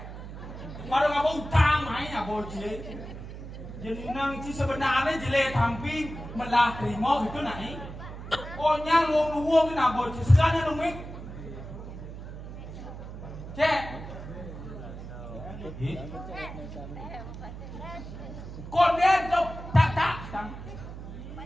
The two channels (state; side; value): noise; right; hum, 11 dB below the sound